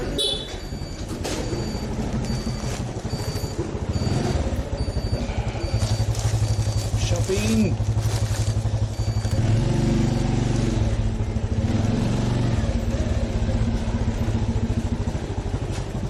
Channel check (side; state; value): both; identical; correlation 1.00